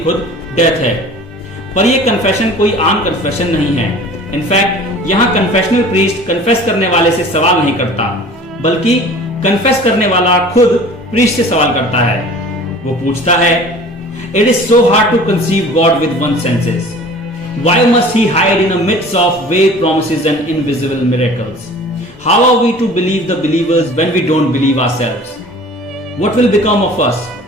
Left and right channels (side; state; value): both; normal; correlation 0.44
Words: खुद डेथ है। पर यह कन्फेशन कोई आम कन्फेशन नहीं है। इनफैक्ट यहां कन्फेशनल प्रीस्ट कन्फेस करने वाले से सवाल नहीं करता, बल्कि कन्फेस करने वाला खुद प्रीस्ट से सवाल करता है। वो पूछता है, it is so hard to conceive God with one senses, why must he hide in a midst of vague promises and invisible miracles? How are we to believe the believers when we don't believe ourselves? What will become of us